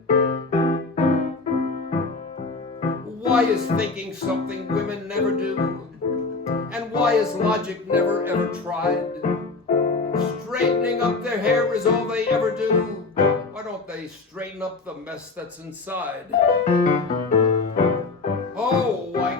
Why is thinking something women never do? And why is logic never ever tried? Straightening up their hair is all they ever do. Why don't they they straighten up the mess that's inside. Oh,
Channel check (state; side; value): quieter; right; 3.9 dB